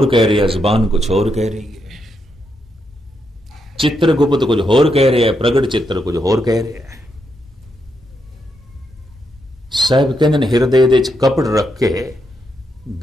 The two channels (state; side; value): normal; both; correlation 0.81